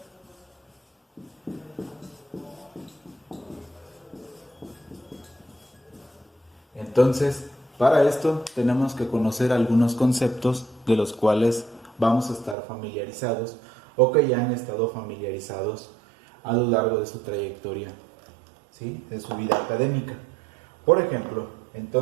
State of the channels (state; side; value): drops out; left; at 12.6 s